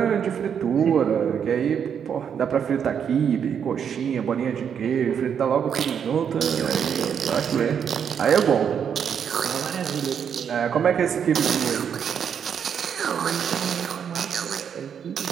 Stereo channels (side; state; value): left; quieter; 7.8 dB